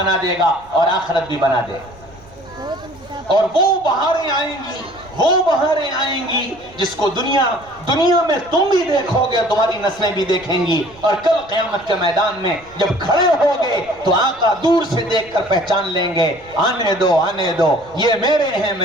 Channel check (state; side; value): noise; right; rumble, 25 dB below the sound